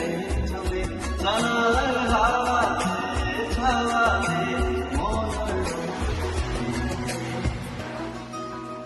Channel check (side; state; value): both; identical; correlation 1.00